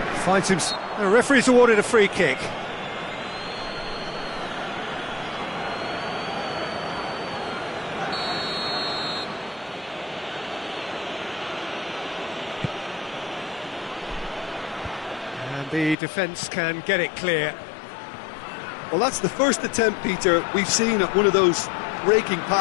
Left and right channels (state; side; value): drops out; right; at 16.0 s